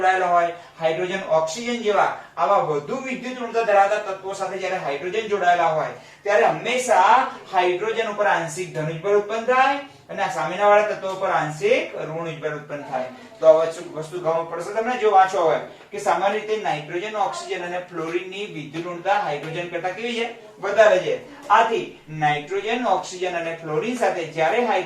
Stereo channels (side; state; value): both; identical; correlation 1.00